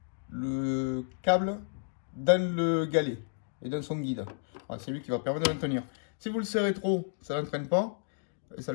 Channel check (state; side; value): silent; right; digital silence